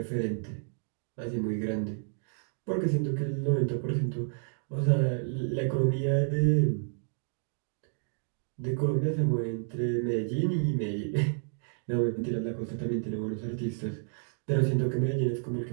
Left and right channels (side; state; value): left; silent; digital silence